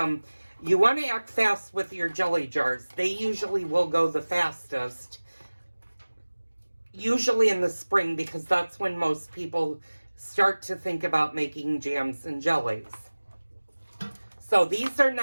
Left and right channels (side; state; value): both; inverted; correlation -1.00